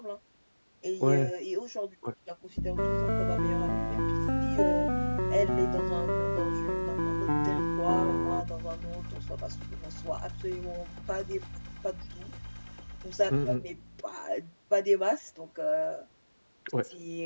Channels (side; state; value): both; inverted; correlation -1.00